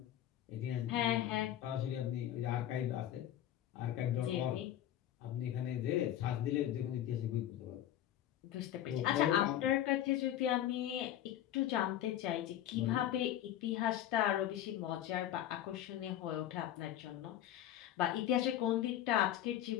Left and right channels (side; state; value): right; quieter; 11.8 dB